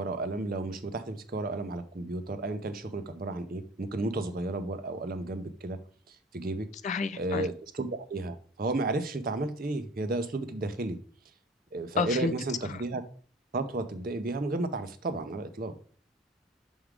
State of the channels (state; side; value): normal; both; correlation 0.43